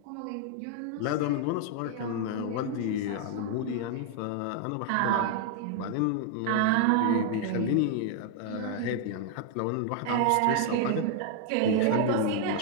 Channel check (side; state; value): both; different; correlation 0.00